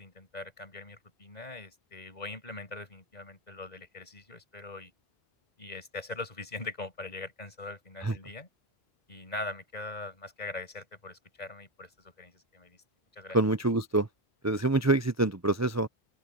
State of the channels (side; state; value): both; normal; correlation 0.12